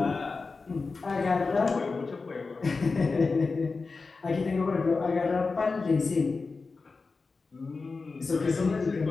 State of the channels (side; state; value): right; quieter; 4.2 dB